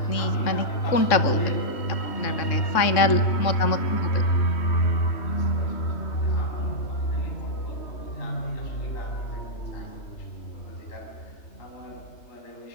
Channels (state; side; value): late; right; 3.6 ms